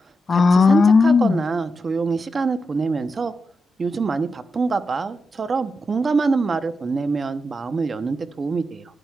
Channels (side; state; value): both; normal; correlation 0.87